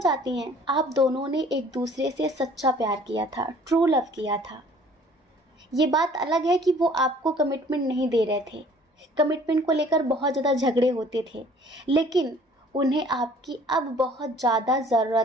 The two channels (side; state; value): both; normal; correlation 0.53